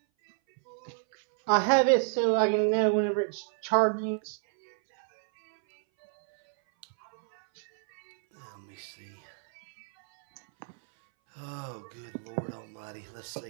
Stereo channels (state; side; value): silent; left; 58 dB below the other